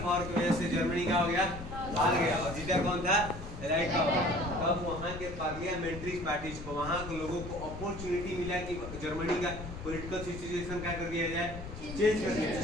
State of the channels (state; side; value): noise; left; rumble, 10 dB below the sound